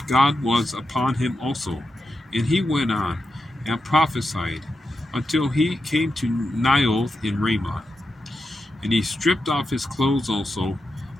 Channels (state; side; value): normal; both; correlation 0.88